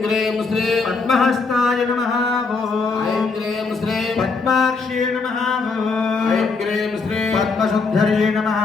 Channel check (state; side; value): quieter; right; 4.3 dB